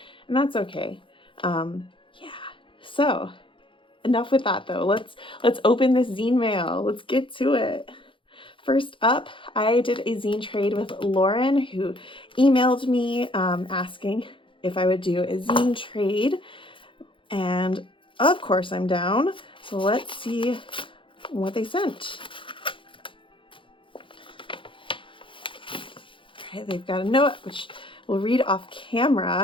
and that's okay. Yeah. So enough with that though. Let's open this zine mail. Let's get to it. First up, I did a zine trade with Lauren, who emailed me asking if I would do a zine trade, and of course I'm down. So let's see what they sent. All right, they've got a note which we'll read off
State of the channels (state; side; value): late; right; 0.25 ms